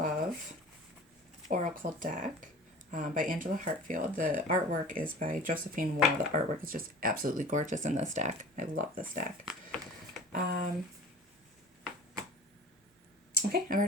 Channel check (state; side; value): normal; both; correlation 0.40